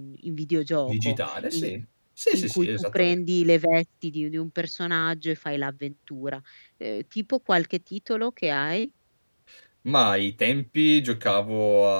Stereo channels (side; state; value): both; inverted; correlation -1.00